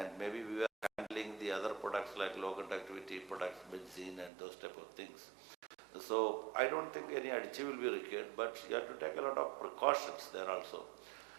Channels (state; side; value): drops out; left; at 4.3 s